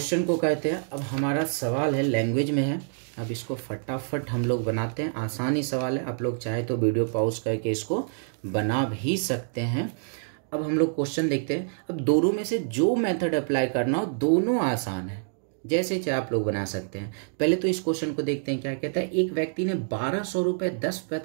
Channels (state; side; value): silent; left; digital silence